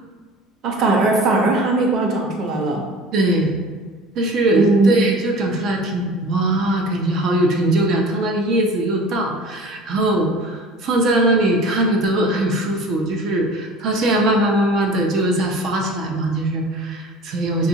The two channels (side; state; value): both; normal; correlation 0.41